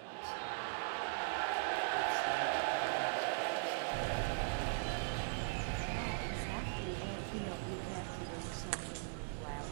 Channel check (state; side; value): silent; left; digital silence